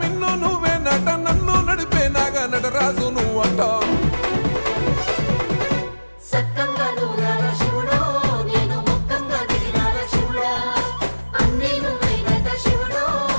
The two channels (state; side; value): inverted; both; correlation -1.00